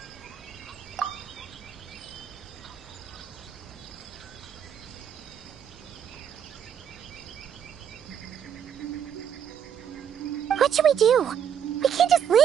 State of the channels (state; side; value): quieter; left; 8.5 dB